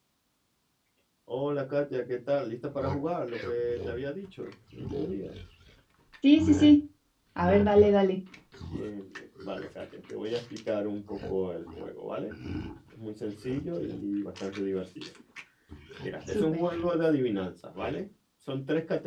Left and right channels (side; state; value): both; identical; correlation 1.00